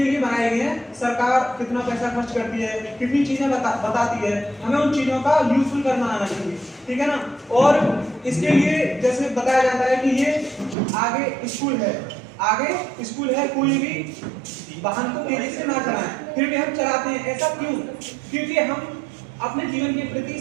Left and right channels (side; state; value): left; drops out; at 10.8 s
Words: लिए बनाए गए हैं, सरकार कितना पैसा खर्च करती है, कितनी चीजें बताती है, हमें उन चीजों का यूजफुल करना आना चाहिए, ठीक है ना। और इसके लिए जैसे बताया जाता है कि ये आगे स्कूल है, आगे स्कूल है, कोई भी वाहन को तेजी से ना चलाएं, फिर भी हम चलाते हैं। ऐसा क्यों? क्योंकि हम अपने जीवन के